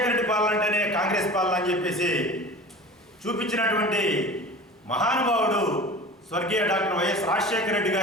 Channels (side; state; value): both; normal; correlation 0.37